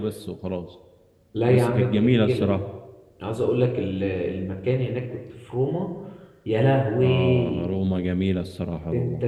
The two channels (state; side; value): identical; both; correlation 1.00